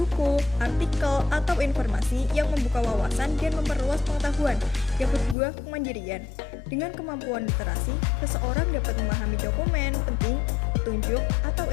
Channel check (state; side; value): drops out; right; at 5.4 s